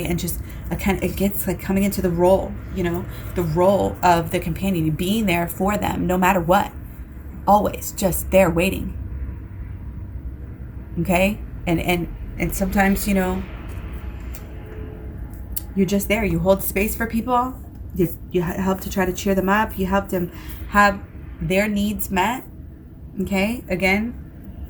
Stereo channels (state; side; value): identical; both; correlation 1.00